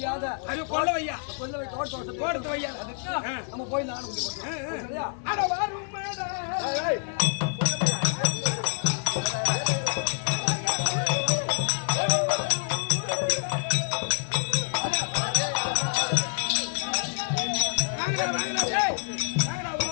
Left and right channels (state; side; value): silent; right; 60 dB below the other